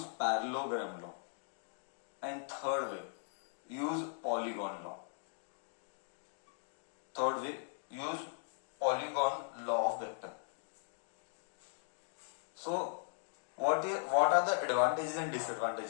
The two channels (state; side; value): silent; right; digital silence